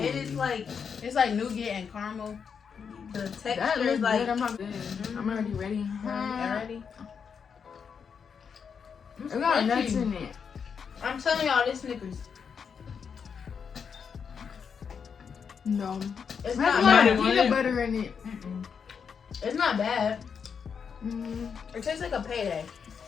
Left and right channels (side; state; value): right; quieter; 6.5 dB